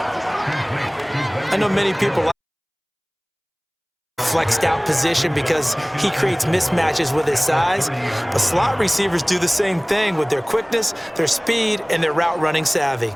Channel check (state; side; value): identical; both; correlation 1.00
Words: I know many people like flexed out position because he creates mismatches with his size, but slot receivers do the same thing with their quickness, their speed, and their route running savvy.